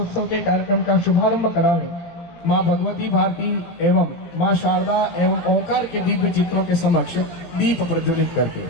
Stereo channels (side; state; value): right; late; 17 ms